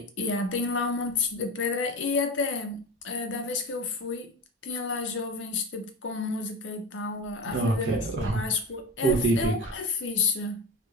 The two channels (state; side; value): normal; both; correlation 0.27